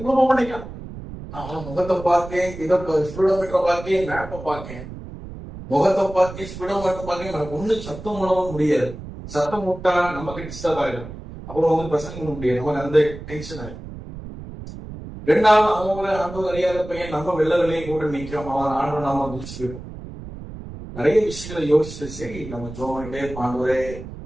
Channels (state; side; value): noise; right; rumble, 12 dB below the sound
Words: போக மாட்டேங்கான். அவன் முகத்தை பார்க்கேன், இதை ஸ்பீடோமீட்டரை பார்க்கேன், மேப்பை பார்க்கேன், முகத்தை பார்க்கேன், ஸ்பீடோமீட்டரை பார்க்கேன். எனக்கு ஒண்ணு சத்தம் பண்ணவும் முடியாது. சத்தம் விட்டா நமக்கு டிஸ்டர்ப் ஆயிடும். அப்புறம் வந்து பிரசங்க பண்ண முடியாது. நமக்கு அந்த டென்ஷன் ஆயிடும். ரெண்டாவது அவங்க ஆண்டவர் அறியாத பையன் நம்ம வெள்ளை கூட நிற்கிறோம். அவன் ஆண்டு நாம முடிச்சுருக்கோம். நிறைய விஷயங்களை யோசிச்சு சரி நம்ம ஜோமன்ட்டே பாண்டவரே